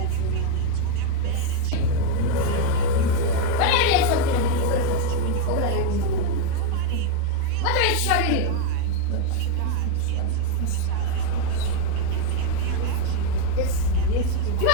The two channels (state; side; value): different; both; correlation 0.01